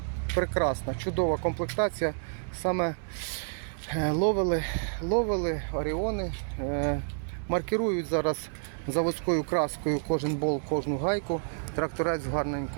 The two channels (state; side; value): silent; left; digital silence